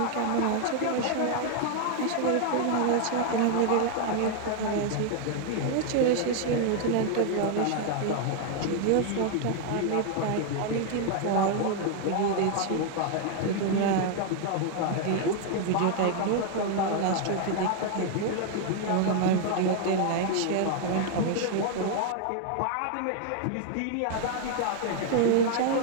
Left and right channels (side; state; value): both; different; correlation 0.00